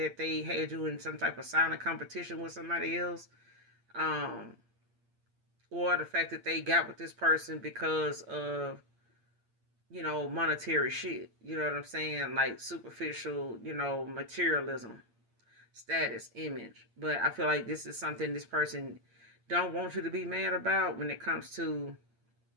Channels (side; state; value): left; late; 8.6 ms